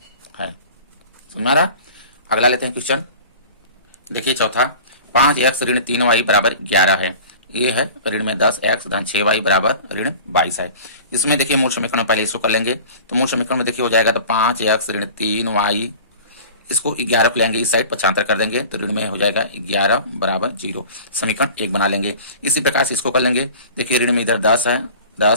है। समझ में आ रहा? अगला लेते हैं क्वेश्चन। देखिए चौथा, 5x ऋण 3y बराबर 11 है। ये है ऋण में 10x धन 6y बराबर ऋण 22 है। इसमें देखिए मूल समीकरण में पहले इसको कर लेंगे, तो मूल समीकरण में देखिए हो जाएगा तो 5x ऋण 3y, इसको 11 को लेंगे इस साइड 75 कर देंगे तो ऋण में हो जाएगा 11 बराबर 0। समीकरण 1 बना लेंगे। इसी प्रकार से इसको कर लेंगे। देखिए ऋण में इधर 10 है,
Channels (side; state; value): both; inverted; correlation -0.41